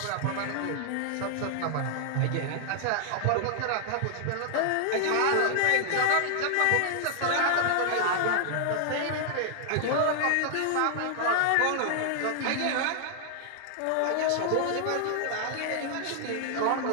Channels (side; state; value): both; different; correlation -0.01